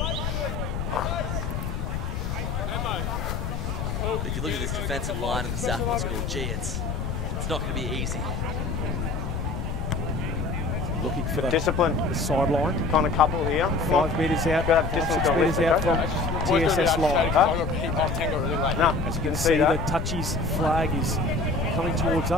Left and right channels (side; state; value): left; noise; rumble, 2 dB below the sound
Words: If you look at this defensive line in the Southport School, gee, it's not going to be easy. Looking for the Discipline. sideline. Kind of couple here. 5 metres out, Gotta have 5, 6 distance metres on out this, from TSS line. No, As you can see, the touchies flag is coming towards